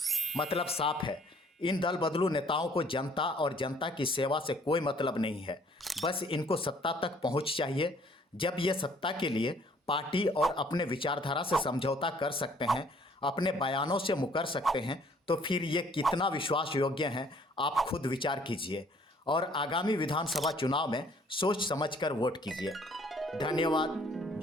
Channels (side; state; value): both; normal; correlation 0.59